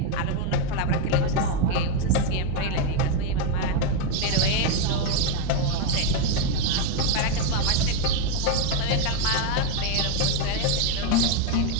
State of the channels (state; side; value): different; both; correlation 0.01